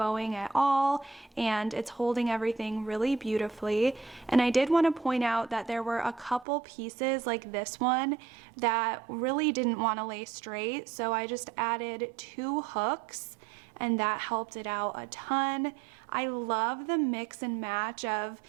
at all and it's holding everything really beautifully. And I did want to point out that there were a couple pieces like this one that really didn't want to lay straight, so I just added 2 hooks and that helped it out a ton. I love the mix and match of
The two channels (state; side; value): drops out; left; at 6.5 s